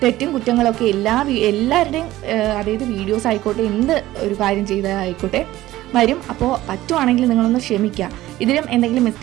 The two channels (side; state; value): left; quieter; 15.8 dB